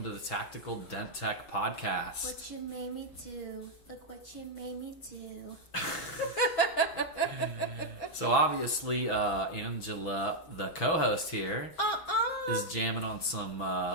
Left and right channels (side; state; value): right; late; 6.1 ms